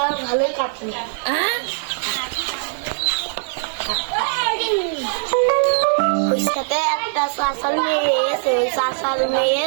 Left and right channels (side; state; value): left; silent; digital silence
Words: ভালোই কাটলো। সাথে একটা চাষার মেয়ে এসে, ওই চাষার